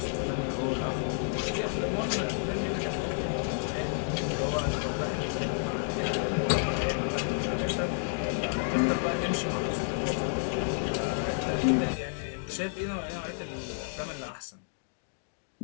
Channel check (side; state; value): right; silent; digital silence